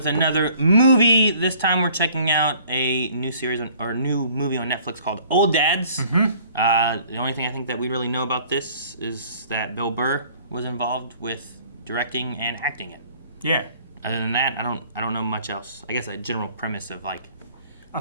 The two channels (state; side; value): inverted; both; correlation -0.54